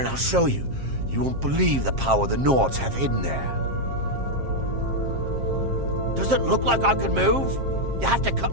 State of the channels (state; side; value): late; left; 7.5 ms